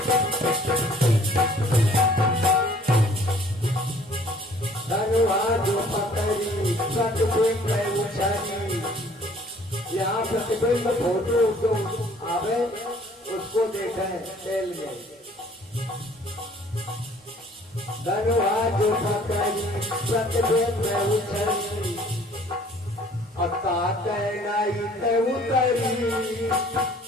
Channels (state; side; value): normal; both; correlation 0.56